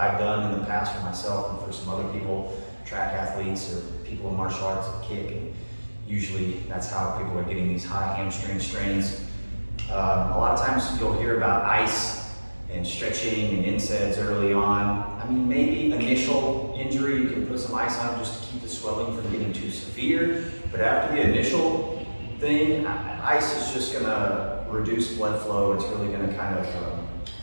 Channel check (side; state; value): both; inverted; correlation -1.00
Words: done in the past for myself and for some other people, track athletes or people in martial arts that kick. And usually that's how people are getting these high hamstring strains. A lot of times you'll hear about ice and stretching and NSAIDs early on. I mean, maybe initial injury, you can put some ice on just to keep the swelling from getting too severe. But after the initial thing, ice is just gonna reduce blood flow. It's really gonna kind of